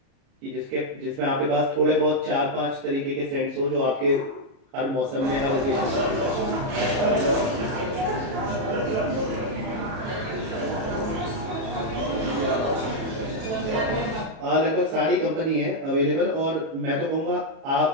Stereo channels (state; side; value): late; left; 37 ms